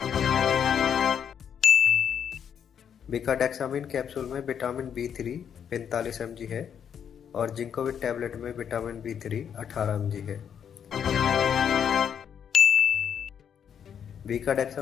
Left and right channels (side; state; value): right; quieter; 8.2 dB